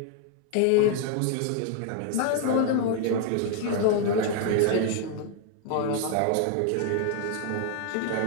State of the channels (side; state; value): both; different; correlation 0.00